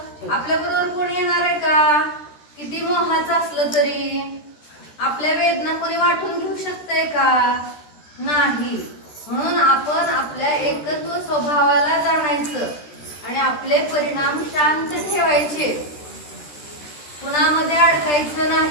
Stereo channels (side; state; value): right; late; 13 ms